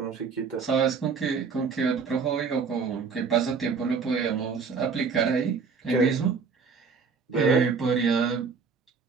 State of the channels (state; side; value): quieter; left; 5.4 dB